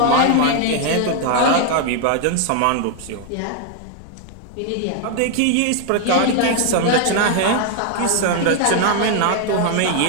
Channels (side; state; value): both; different; correlation 0.00